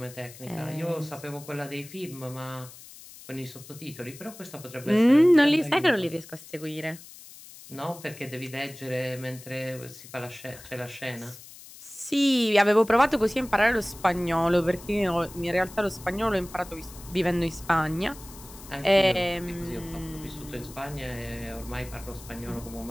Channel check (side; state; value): left; noise; hiss, 18 dB below the sound